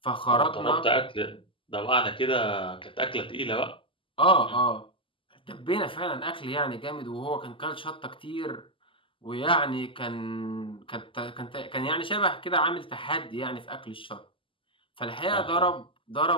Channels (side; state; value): right; late; 0.25 ms